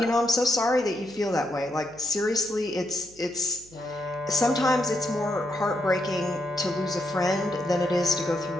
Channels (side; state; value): right; noise; hum, 25 dB below the sound